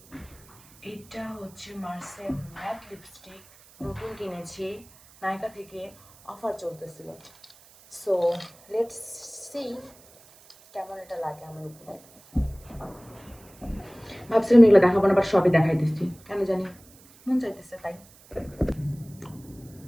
এটা হচ্ছে মার্সেল ম্যাট লিপস্টিক, নতুন কিনেছি, নায়িকা থেকে অফার চলতেছিল। সো লেটস সি কেমন এটা লাগে আমার উপরে। ভাবছিলাম এগুলো দেখাবো না, বাট সবই দেখাই দিচ্ছি, কেন জানি মন চাইতেছে তাই।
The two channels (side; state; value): right; noise; hiss, 25 dB below the sound